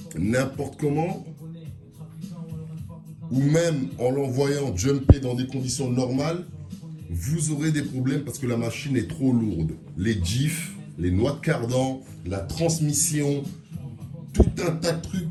n'importe comment, ou même en l'envoyant jumper dans des conditions normales, vous aurez des problèmes parce que la machine est trop lourde. Les diffs, les noix de cardan, la transmission, tout un tas de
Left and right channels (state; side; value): identical; both; correlation 1.00